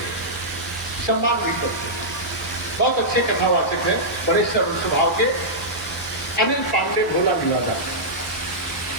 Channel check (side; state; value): both; normal; correlation -0.13